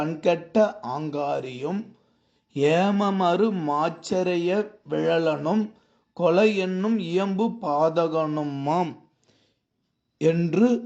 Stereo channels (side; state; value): both; identical; correlation 1.00